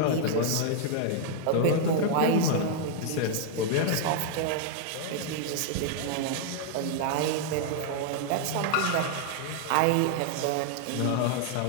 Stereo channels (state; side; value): different; both; correlation 0.00